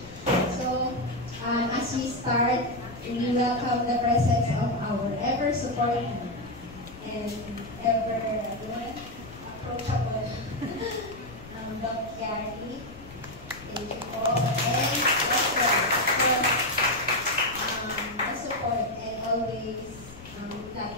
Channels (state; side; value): noise; left; rumble, 17 dB below the sound